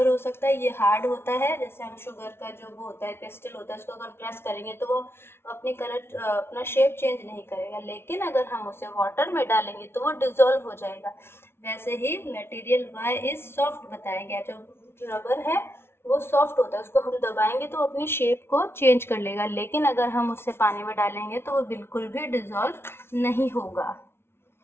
हो सकता है, ये हार्ड होता है, जैसे हम शुगर का जो वो होता है क्रिस्टल होता है, उसको अगर प्रेस करेंगे तो वो अपनी कलर अपना शेप चेंज नहीं करेगा, लेकिन अगर हम उसे वाटर में डालेंगे तो वो डिजोल्व हो जाएगा। वैसे ही मटेरियल Y इज सॉफ्ट बताया गया। जो रबर है वो सॉफ्ट होता है, उसको हम दबाएंगे तो अपनी शेप को चेंज कर लेगा, लेकिन अगर हम उससे पानी में डालेंगे तो वो बिल्कुल भी डिजॉल्व नहीं होगा।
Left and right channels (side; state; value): right; late; 0.12 ms